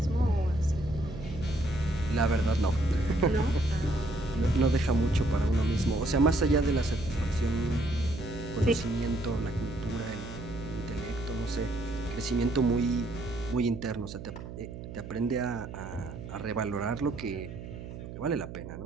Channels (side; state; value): right; noise; hum, 11 dB below the sound